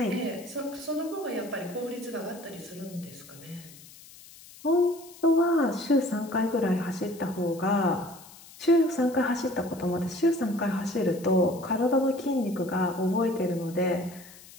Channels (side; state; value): left; noise; hiss, 20 dB below the sound